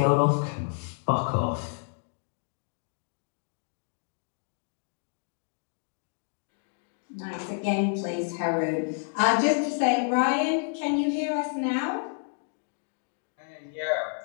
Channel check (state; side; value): silent; right; 58 dB below the other